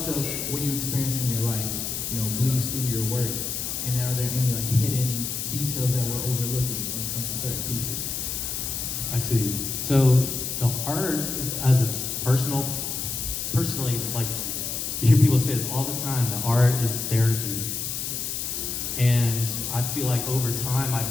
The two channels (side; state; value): left; noise; hiss, 3 dB below the sound